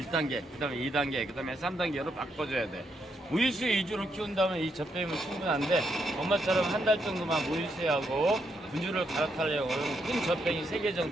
1단계, 그 다음에 2단계, 그 다음에 3단계로 바꿔줘야 돼. 모유수유 위주로 키운다면 이 젖병이면 충분한데 엄마처럼 한 달 정도만 모유수유하고 분유를 갈아타려고 하면 큰 젖병이 3개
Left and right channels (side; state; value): both; normal; correlation 0.78